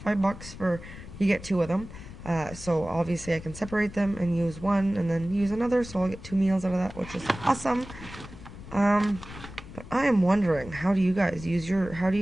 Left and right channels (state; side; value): noise; left; rumble, 14 dB below the sound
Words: $5 for... You get 2 of them, so obviously I can separate them and use one and then use another, so I'll get 2 meals out of that, which is awesome. But I am wondering, what do you guys use your